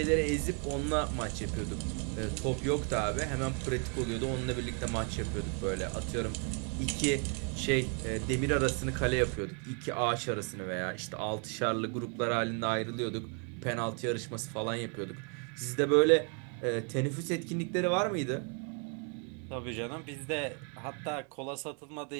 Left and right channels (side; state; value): left; quieter; 39.7 dB